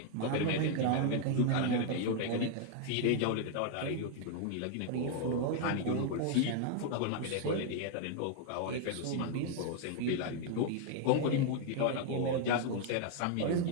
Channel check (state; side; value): different; both; correlation 0.00